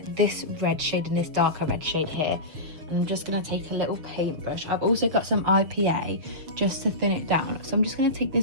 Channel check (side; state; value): left; late; 6.7 ms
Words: this red shade and this darker red shade here. And I'm just going to take a little paintbrush. I've also got some IPA just to thin it down. So I'm just going to take